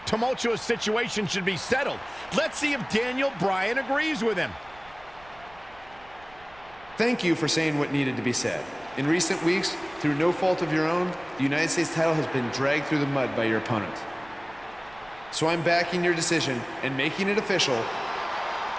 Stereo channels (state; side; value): noise; right; rumble, 25 dB below the sound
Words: tumultuous situation should be settled. Let's see if Daniel Bryan agrees with him. Thank you for saying what needed to be said. In recent weeks, through no fault of your own, the United States title has been dragged through the mud by your opponent. So I'm backing your decision and making it official.